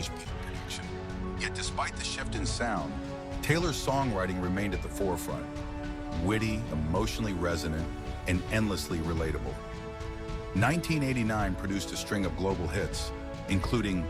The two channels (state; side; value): identical; both; correlation 1.00